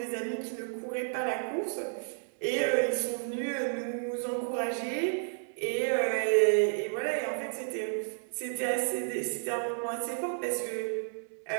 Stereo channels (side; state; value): left; silent; 57 dB below the other